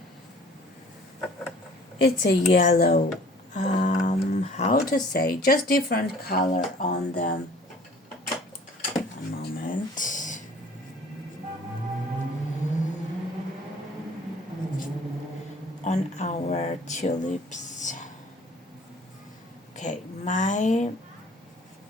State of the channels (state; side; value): normal; both; correlation 0.51